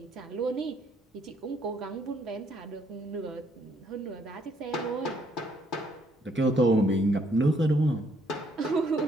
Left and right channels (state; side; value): normal; both; correlation 0.69